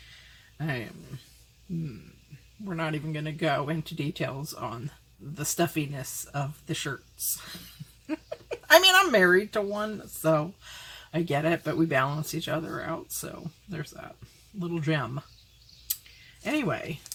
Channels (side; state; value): both; identical; correlation 1.00